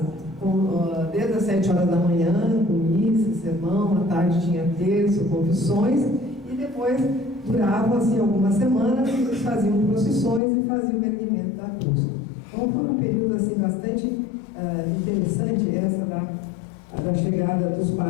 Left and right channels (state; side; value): drops out; right; at 10.4 s